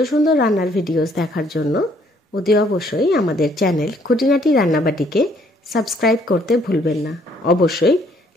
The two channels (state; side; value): normal; both; correlation 0.65